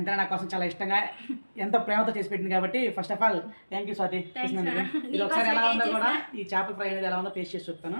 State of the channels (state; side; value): inverted; both; correlation -1.00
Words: నా కోసం చాలా ఇష్టంగా ఎంతో ప్రేమతో చేసి పెట్టింది కాబట్టి first of all thank you Swathi. ఇది ఒకసారి ఎలా ఉందో కూడా ఈ చేపల ఫ్రై అనేది ఎలా ఉందో టేస్ట్ చేసి చూస్తాను.